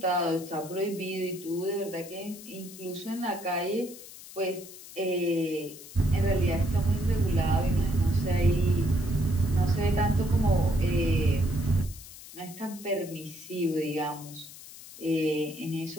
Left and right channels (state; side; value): noise; left; hiss, 16 dB below the sound